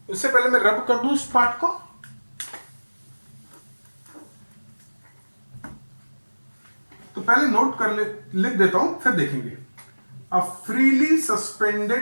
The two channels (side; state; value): both; inverted; correlation -1.00